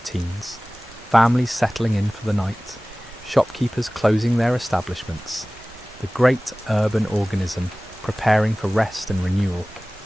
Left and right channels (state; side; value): normal; both; correlation 0.98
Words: families settling in for the night, shopkeepers closing their establishments, the great urban organism preparing for rest and renewal.